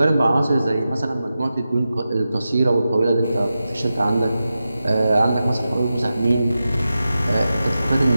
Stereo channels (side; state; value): both; inverted; correlation -0.92